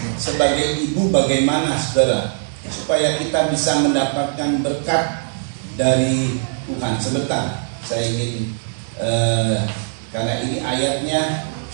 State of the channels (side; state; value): left; silent; digital silence